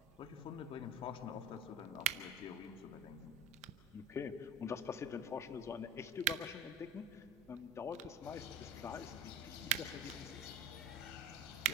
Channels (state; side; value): normal; both; correlation 0.31